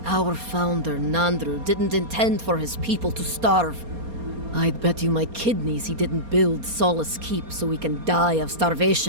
Our founder, Nandru, didn't intend for his people to starve. I'd bet you my kidneys he didn't build Solace Keep so we can die of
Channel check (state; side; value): late; left; 4.3 ms